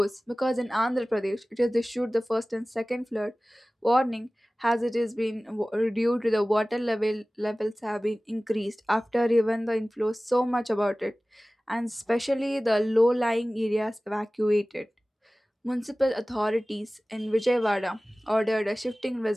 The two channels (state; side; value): normal; both; correlation 0.98